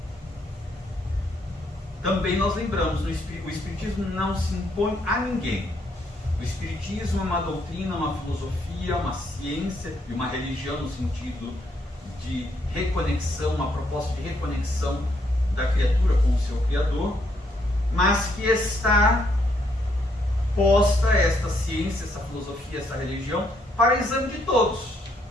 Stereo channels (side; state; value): both; normal; correlation 0.73